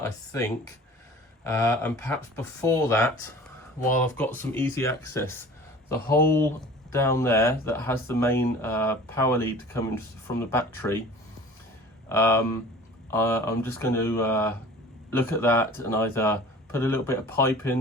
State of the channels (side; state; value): both; normal; correlation 0.43